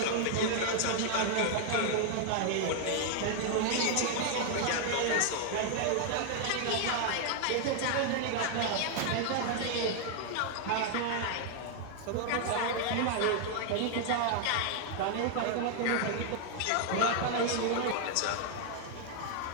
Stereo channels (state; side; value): different; both; correlation 0.00